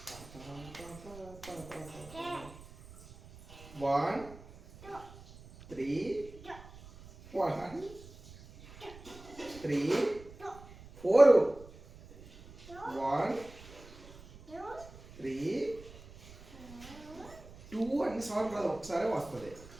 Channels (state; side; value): noise; right; rumble, 19 dB below the sound